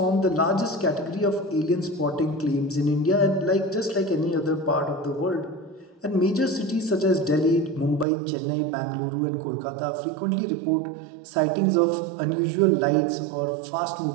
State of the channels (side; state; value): left; drops out; at 8.1 s